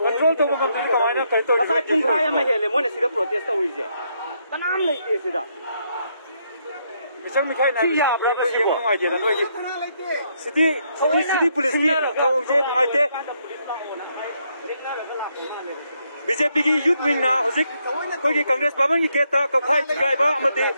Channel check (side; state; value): both; inverted; correlation -0.75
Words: control to become the kind of territory. Aside from Kaya Mahele, when I see the protest over here. The name like this. Mr. Mikhail, I have no idea. City police here, BJP youth wing now, Congress Babang Keta, Kapai, Gaiba,